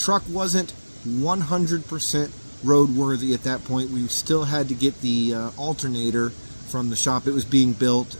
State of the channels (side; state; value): both; inverted; correlation -1.00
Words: wasn't 100% roadworthy at that point. We still had to get the alternator from the shop. It was being built.